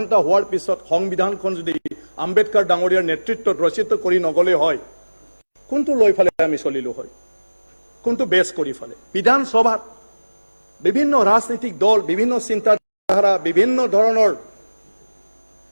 হোৱাৰ পিছত সংবিধানখন যদি আম্বেদকাৰ ডাঙৰীয়াৰ নেতৃত্বত ৰচিত কৰি নগলে হয় কোনটো লৈ ফালে আমি চলিলো হয় কোনটো বেছ কৰি ফালে বিধানসভাত বিভিন্ন ৰাজনৈতিক দল বিভিন্ন চিন্তাধাৰা বিভিন্ন ধৰণৰ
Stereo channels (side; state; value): both; inverted; correlation -1.00